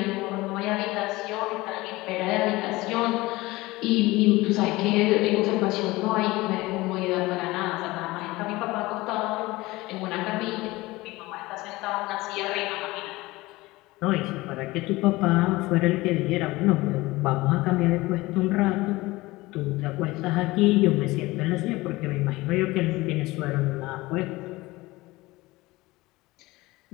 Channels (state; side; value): quieter; right; 20.3 dB